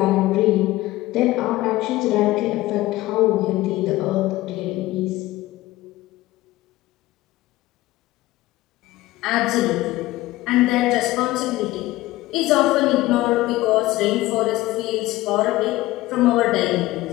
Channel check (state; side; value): quieter; right; 17.7 dB